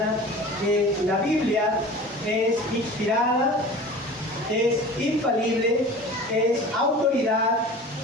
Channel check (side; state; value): both; normal; correlation 0.39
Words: que la Biblia es inspirada, es infalible, es autoridad